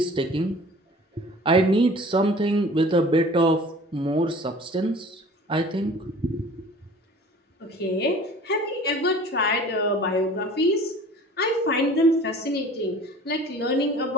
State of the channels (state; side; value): normal; both; correlation 0.45